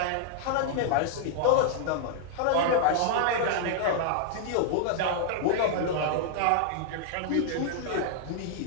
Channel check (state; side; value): different; both; correlation -0.01